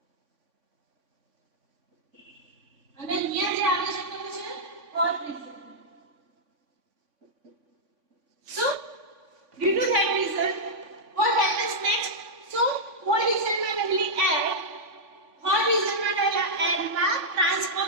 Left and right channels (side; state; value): left; late; 3.5 ms